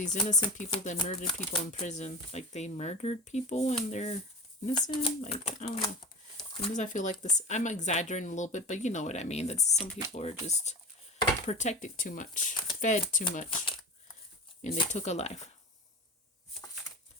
innocent people that murdered people in prison. Like, they murdered people and they're innocent. Like, I don't know. Sometimes I feel like this, I'm exaggerating a little bit, but you know what I mean. That some people are just protected too much, fed too much, and they took a life.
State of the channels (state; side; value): normal; both; correlation 0.31